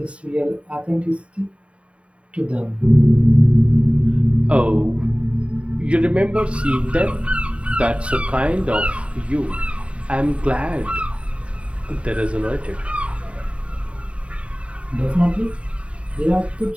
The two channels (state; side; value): late; left; 0.062 ms